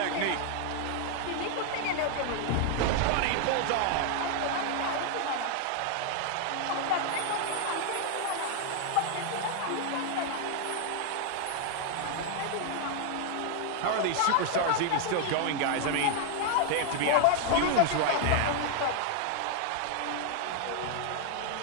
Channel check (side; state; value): both; different; correlation 0.00